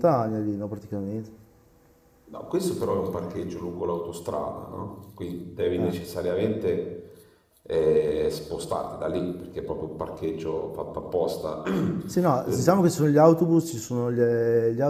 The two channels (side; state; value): both; identical; correlation 1.00